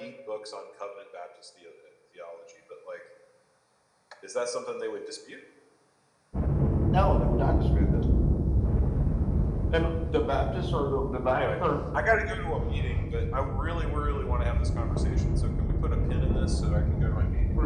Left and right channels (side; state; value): both; identical; correlation 1.00